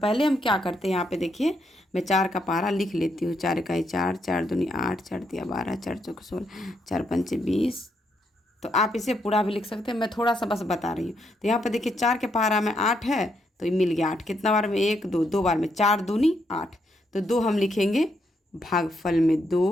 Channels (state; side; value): normal; both; correlation 0.77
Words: हम क्या करते हैं, यहाँ पे देखिए मैं 4 का पहाड़ा लिख लेती हूँ। 4 का 4, 4 दूनी 8, 4 तिया 12, 4 चौक 16, 4 पंचे 20। तो आप इसे पूरा भी लिख सकते हैं, मैं थोड़ा सा बस बता रही हूँ। तो यहाँ पे देखिए 4 के पहाड़ा में 8 है, तो ये मिल गया 8। कितना बार में? 1 2, 2 बार में। 4 दूनी 8, तो 2 हम लिखेंगे भागफल में